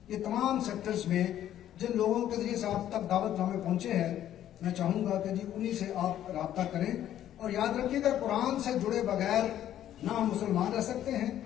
یہ تمام سیکٹرز میں جن لوگوں کے ذریعے سے آپ تک دعوت نامے پہنچے ہیں، میں چاہوں گا کہ جی انہی سے آپ رابطہ کریں. اور یاد رکھیے گا قرآن سے جڑے بغیر نہ ہم مسلمان رہ سکتے ہیں،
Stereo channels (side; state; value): right; quieter; 11.6 dB